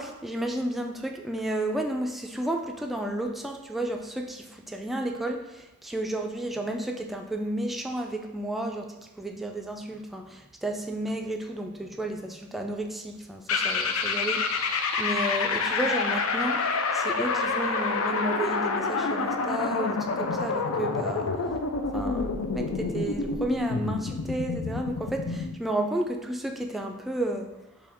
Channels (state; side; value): normal; both; correlation 0.37